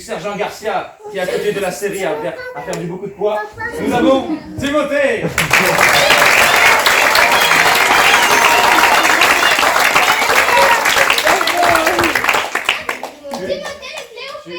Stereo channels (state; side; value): identical; both; correlation 1.00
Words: Garcia, qui est à côté de la série a perdu beaucoup de poids, nous avons Timothée.